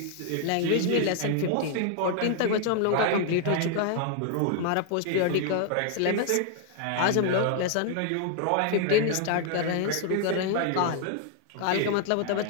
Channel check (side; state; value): both; different; correlation 0.00